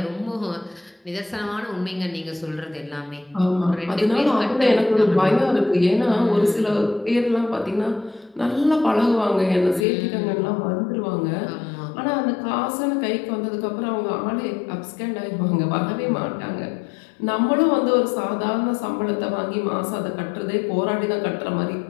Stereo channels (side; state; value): right; drops out; at 9.9 s